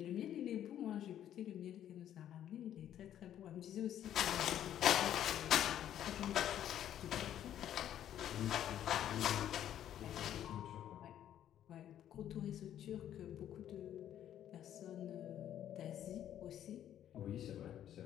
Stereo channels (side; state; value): right; quieter; 10.9 dB